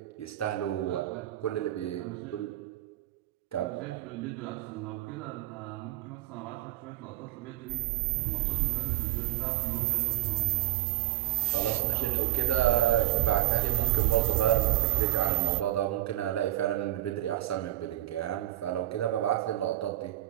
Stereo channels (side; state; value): left; quieter; 14.9 dB